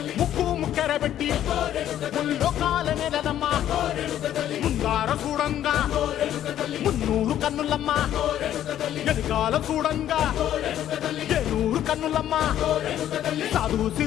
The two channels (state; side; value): quieter; right; 11.5 dB